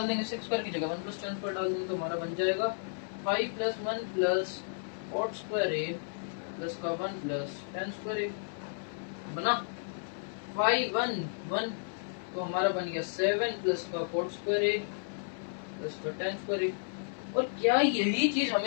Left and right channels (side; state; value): right; silent; 56 dB below the other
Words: देंगे, 6 स्क्वायर की जगह 1 प्लस tan स्क्वायर डाल देंगे, तो हमारा बन जाएगा 5 प्लस 1 प्लस कॉट स्क्वायर ए प्लस का 1 प्लस tan स्क्वायर ए बना 5 1 1, तो हमारा बन गया 7 प्लस का कॉट स्क्वायर ए प्लस का tan स्क्वायर ए। और क्या यही चीज